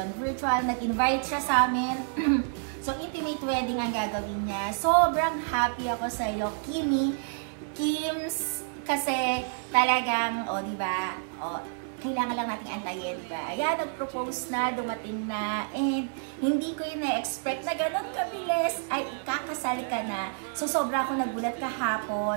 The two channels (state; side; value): silent; left; 59 dB below the other